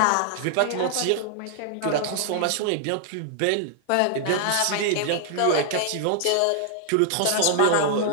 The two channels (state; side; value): different; both; correlation 0.00